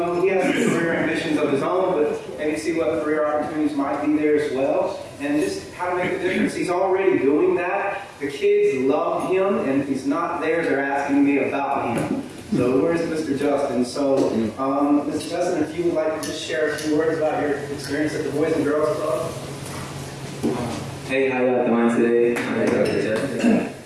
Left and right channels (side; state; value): both; identical; correlation 1.00